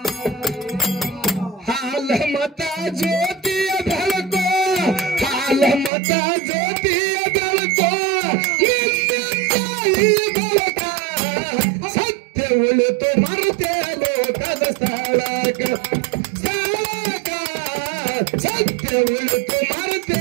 ಹಾಲ ಮತ ಜ್ಯೋತಿಯ ಬೆಳಕೋ ಹಾಲ ಮತ ಜ್ಯೋತಿಯ ಬೆಳಕೋ ನಿನ್ನಿಂದ ಈ ಬೆಳಕ ಸತ್ಯ ಉಳಿತು ಮರುತೆ ಲೋಕದ ಸ್ಥಳಕ ಸ್ಥಳಕ ಸತ್ಯ ಉಳಿತು ಮರುತೆ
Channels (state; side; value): drops out; left; at 5.9 s